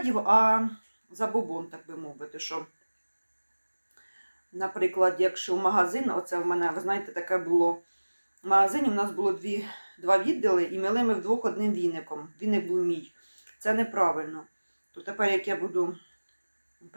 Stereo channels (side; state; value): both; inverted; correlation -1.00